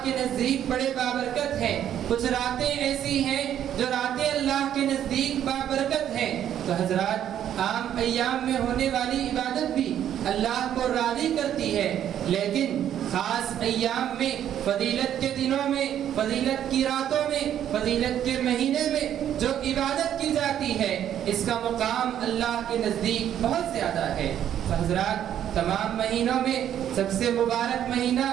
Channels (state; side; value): quieter; left; 10.4 dB